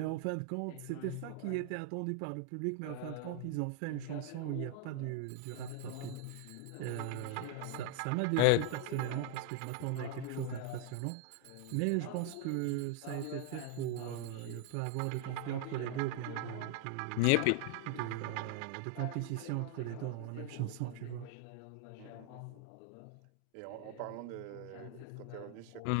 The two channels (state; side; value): different; both; correlation 0.00